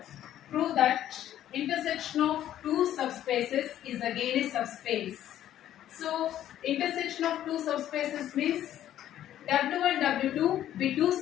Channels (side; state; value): right; quieter; 11.9 dB